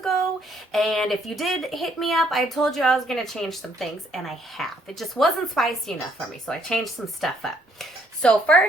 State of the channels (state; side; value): normal; both; correlation 0.67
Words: and if you did hit me up, I told you I was going to change some things, and I have. It just wasn't spicy enough for me, so I changed some stuff up. So